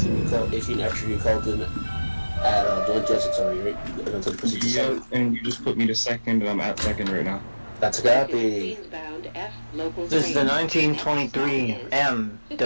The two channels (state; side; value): inverted; both; correlation -1.00